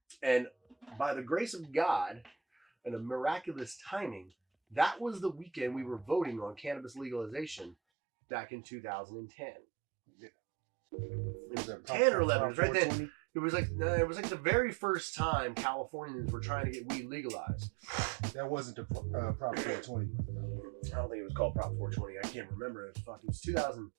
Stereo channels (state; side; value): drops out; left; at 7.8 s